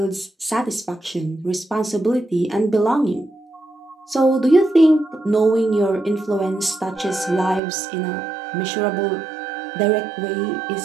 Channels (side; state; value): left; drops out; at 7.6 s